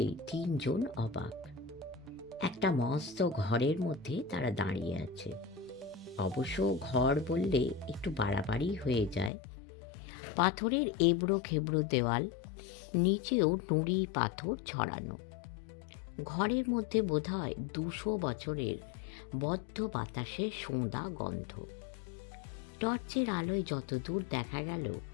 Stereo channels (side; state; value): right; drops out; at 9.3 s